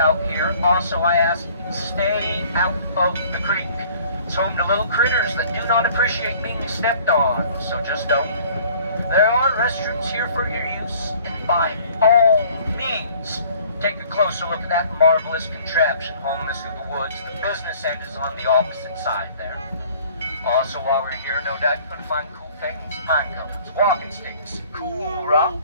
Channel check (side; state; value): both; inverted; correlation -0.53